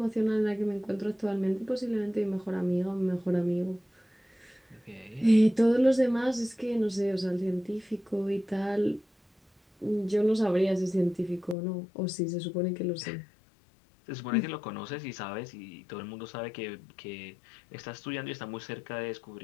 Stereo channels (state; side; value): drops out; right; at 11.6 s